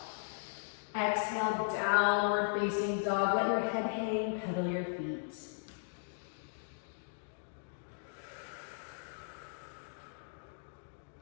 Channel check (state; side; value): silent; right; digital silence